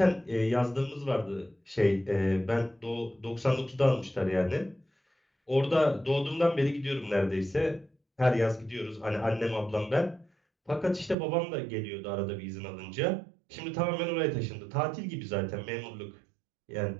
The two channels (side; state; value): left; drops out; at 11.2 s